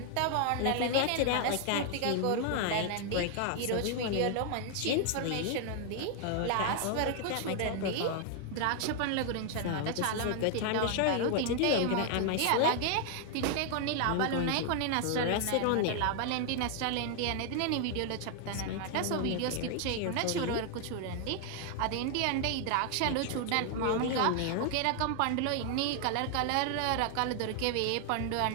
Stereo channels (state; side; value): different; both; correlation 0.00